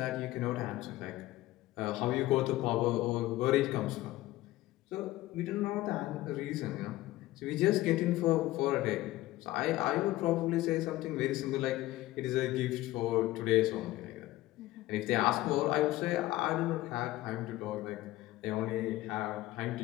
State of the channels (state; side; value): quieter; right; 16.9 dB